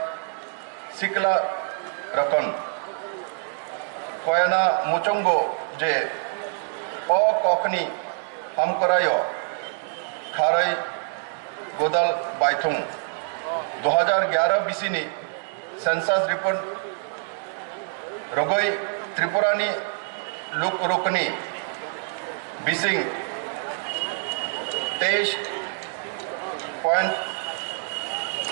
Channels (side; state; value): left; silent; digital silence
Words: सिकला रकन कोयना मुचंगो जे ओ कॉकनी हम करायो खारई गोदल बाइथुंग 2011 बीसीनी सेंसस रिपोर्ट रोगोई त्रिपुरानी लुक रुकनी बिसिंग